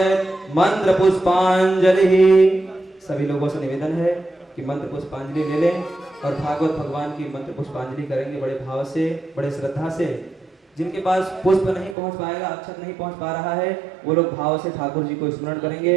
मंत्र पुष्पांजलि। सभी लोगों से निवेदन है कि मंत्र पुष्पांजलि ले लें और भागवत भगवान की मंत्र पुष्पांजलि करेंगे बड़े भाव से, बड़े श्रद्धा से। जिनके पास पुष्प नहीं पहुंच पाएगा, अक्षत नहीं पहुंच पा रहा है, वो लोग भाव से ठाकुर जी को स्मरण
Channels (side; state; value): left; drops out; at 12.0 s